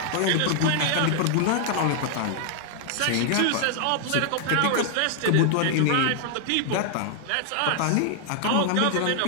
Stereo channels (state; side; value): different; both; correlation 0.00